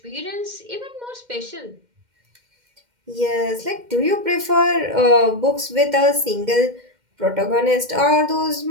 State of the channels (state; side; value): late; left; 2.1 ms